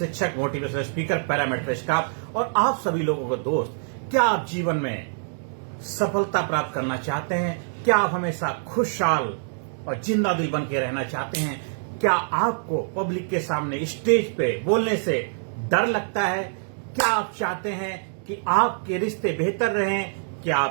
मोटिवेशनल स्पीकर, पैरामीटर स्टाफ और आप सभी लोगों को दोस्त। क्या आप जीवन में सफलता प्राप्त करना चाहते हैं? क्या आप हमेशा खुशहाल और जिंदा दिल बन के रहना चाहते हैं? क्या आपको पब्लिक के सामने स्टेज पे बोलने से डर लगता है? क्या आप चाहते हैं कि आपके रिश्ते बेहतर रहें? क्या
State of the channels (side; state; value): left; silent; digital silence